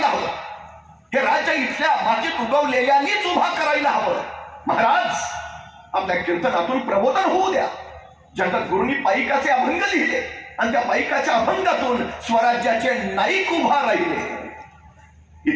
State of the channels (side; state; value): both; identical; correlation 1.00